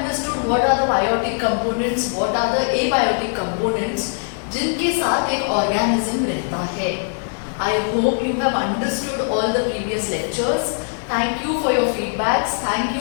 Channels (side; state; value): right; silent; 61 dB below the other